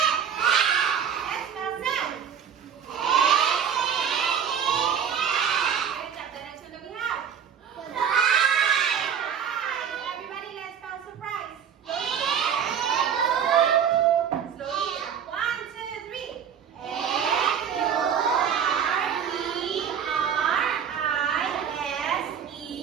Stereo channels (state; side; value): quieter; left; 8.0 dB